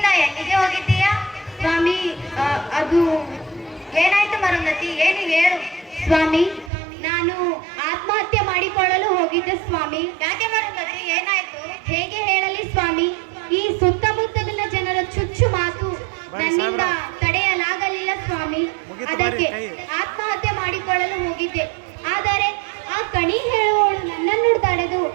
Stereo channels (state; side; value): drops out; left; at 6.7 s